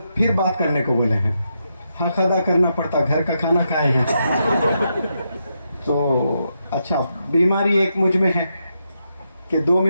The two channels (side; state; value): both; inverted; correlation -0.83